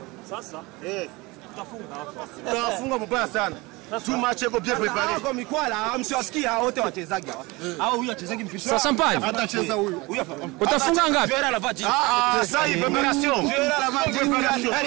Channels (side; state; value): left; quieter; 23.4 dB